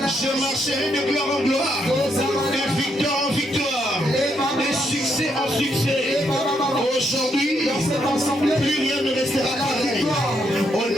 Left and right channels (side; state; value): both; normal; correlation 0.77